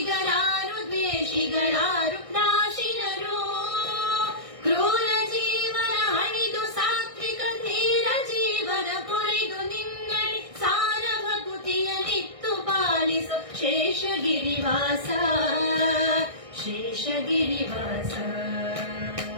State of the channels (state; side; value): late; left; 1.6 ms